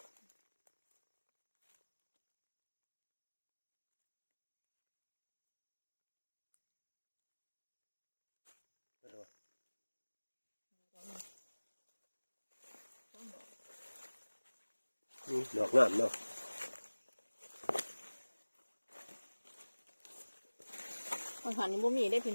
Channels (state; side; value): inverted; both; correlation -1.00